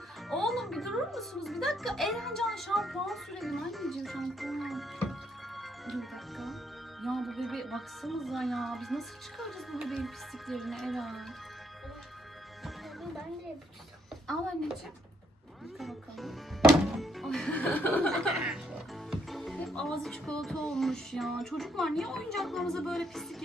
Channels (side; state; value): both; normal; correlation 0.72